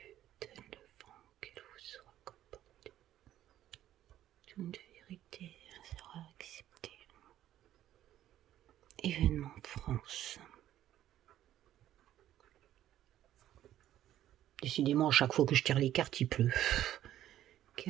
Donne le vent qu'elle vous soit comportée. Toute vérité sera acceptée. Événement France. Décidément, à chaque fois que je tire les cartes, il pleut.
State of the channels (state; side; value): quieter; left; 12.4 dB